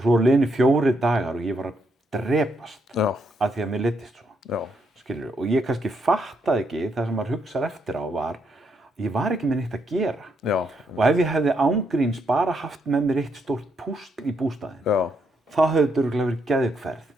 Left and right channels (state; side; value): normal; both; correlation 0.76